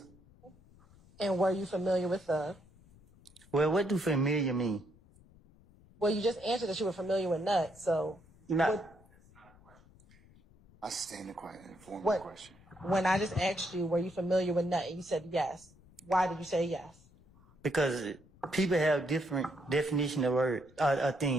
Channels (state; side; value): noise; left; rumble, 26 dB below the sound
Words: And were you familiar with Thug? Well, what do familiar mean? Well, you just answered that you were familiar with Nut, so... I sustain the question. When I just asked you, were you familiar with Nut, and you said yes. Why did you say yes? Because people have different definition of words,